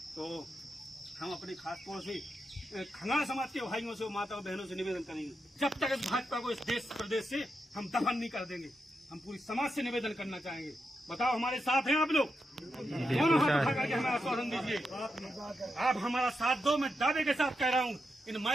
तो हम अपने खास तौर से खंगार समाज के भाइयों से, माताओं बहनों से निवेदन करेंगे, जब तक इस भाजपा को इस देश प्रदेश से हम दफन नहीं कर देंगे। हम पूरी समाज से निवेदन करना चाहेंगे, बताओ हमारे साथ हैं आप लोग? दोनों हाथ उठा करके हमारा आश्वासन दीजिए, आप हमारा साथ दो। मैं दावे के साथ कह रहा हूँ, इन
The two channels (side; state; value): both; normal; correlation 0.86